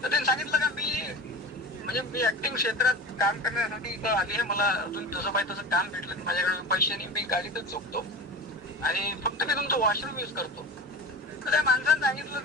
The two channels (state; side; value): normal; both; correlation 0.32